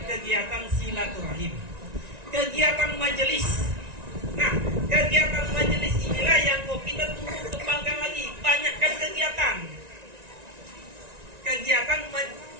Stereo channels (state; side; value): late; left; 1.9 ms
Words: kegiatan silaturahim, kegiatan majelis. Nah, kegiatan majelis inilah yang mau kita tumbuh kembangkan lagi, banyakkan kegiatan